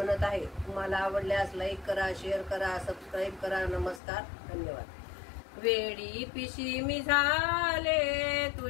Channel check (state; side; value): drops out; right; at 4.0 s